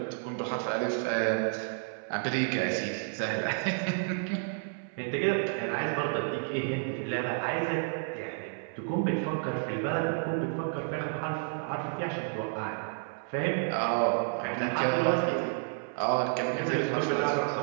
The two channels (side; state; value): left; silent; 57 dB below the other